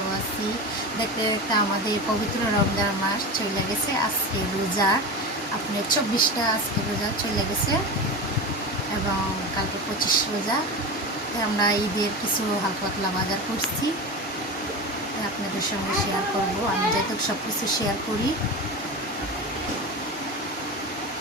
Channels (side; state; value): both; normal; correlation 0.25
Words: আছি। দেখতে দেখতে আমাদের পবিত্র রমজান মাস চলে গেছে। আজকে রোজা আপনার 24টা আজকে রোজা চলে গেছে এবং কালকে 25 রোজা। আমরা ঈদের কিছু হালকা পাতলা বাজার করছি, আপনাদের সঙ্গে শেয়ার করব। আমি যেহেতু সব কিছু শেয়ার করি,